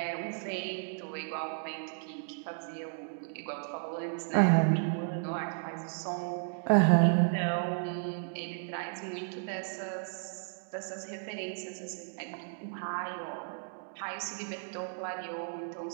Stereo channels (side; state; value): left; silent; digital silence